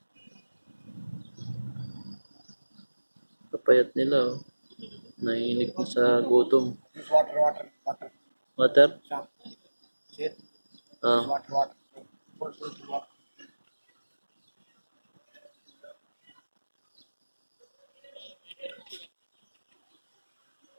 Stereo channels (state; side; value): inverted; both; correlation -1.00